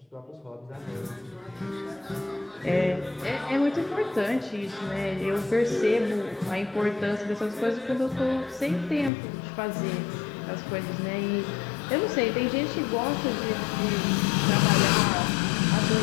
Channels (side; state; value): right; drops out; at 9.1 s